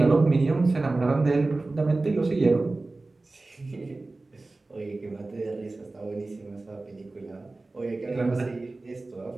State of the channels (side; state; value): left; quieter; 3.2 dB